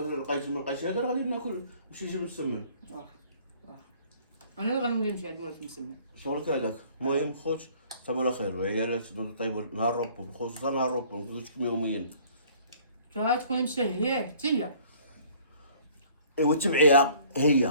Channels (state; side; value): inverted; both; correlation -0.55